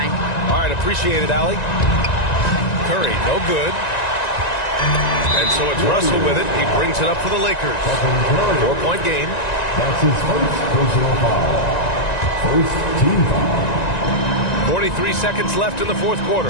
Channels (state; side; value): late; right; 1.9 ms